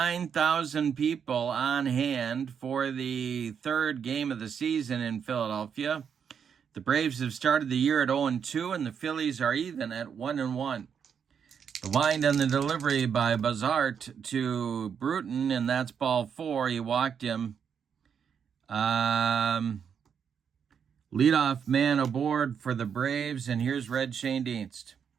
people on hand for the third game of the season in Philadelphia. The Braves have started the year at 0-2, and the Phillies are even at 1-1. The wind and the delivery by Bazart to Bruton, and that's ball 4. He walked him. Leadoff man aboard for the Braves, and here's Red Schoendienst.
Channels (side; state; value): left; quieter; 7.3 dB